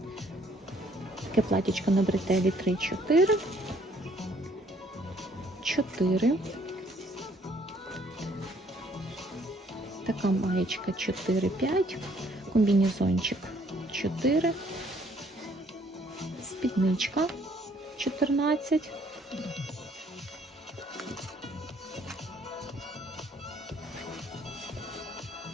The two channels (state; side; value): normal; both; correlation 0.63